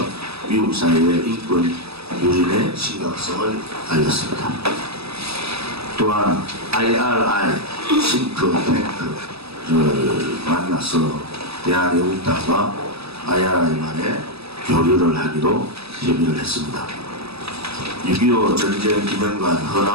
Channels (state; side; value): late; left; 0.78 ms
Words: 미국 사회의 인권 유린의 심각성을 알렸습니다. 또한 IRI 싱크탱크를 만나서 대한애국당과 IRI만의 교류를 하기로 협의를 했습니다. 6.25 전쟁 기념관